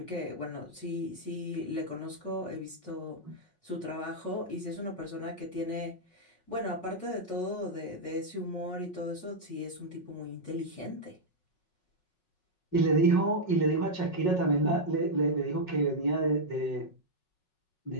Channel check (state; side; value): late; right; 5.4 ms